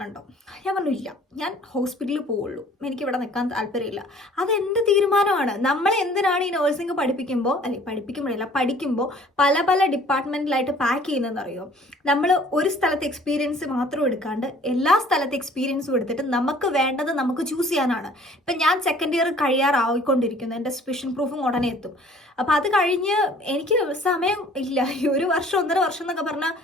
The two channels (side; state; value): both; normal; correlation 0.53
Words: ഉണ്ടോ? ഞാൻ പറഞ്ഞു ഇല്ല, ഞാൻ ഹോസ്പിറ്റലിൽ പോവുള്ളൂ, എനിക്ക് ഇവിടെ നിൽക്കാൻ താല്പര്യമില്ല. അതെൻ്റെ തീരുമാനമാണ്. നമ്മൾ എന്തിനാണ് ഈ നഴ്സിംഗ് പഠിക്കുമ്പോൾ പല ഡിപ്പാർട്ട്മെൻറ്റിലായിട്ട് പാക്ക് ചെയ്യുന്നതെന്ന് അറിയോ? നമ്മൾ ഒരു സ്ഥലത്ത് എക്സ്പീരിയൻസ് മാത്രം എടുക്കാണ്ട് എല്ലാ സ്ഥലത്തെ എക്സ്പീരിയൻസും എടുത്തിട്ട് നമുക്ക് വേണ്ടത് നമുക്ക് ചൂസ് ചെയ്യാനാണ്. ഇപ്പം ഞാൻ സെക്കൻഡ് ഇയർ കഴിയാറായിക്കൊണ്ടിരിക്കുന്നു. എൻ്റെ സ്പെഷ്യൽ പ്രൂഫും ഉടനെ എത്തും. അപ്പോൾ അത് കഴിഞ്ഞ് എനിക്ക് സമയം ഇല്ല. ഈ 1 വർഷം 1.5 വർഷം എന്നൊക്കെ പറഞ്ഞാൽ